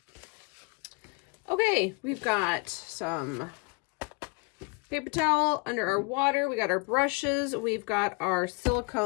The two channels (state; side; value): quieter; right; 30.1 dB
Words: Okay, we've got some paper towel under our water. We got our brushes. We've got our